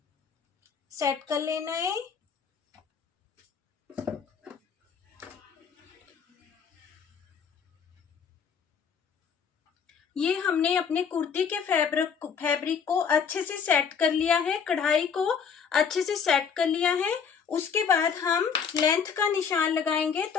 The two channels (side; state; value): right; quieter; 6.7 dB